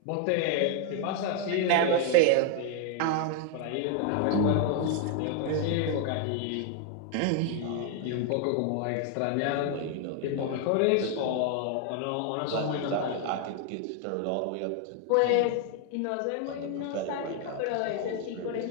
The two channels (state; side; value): different; both; correlation 0.00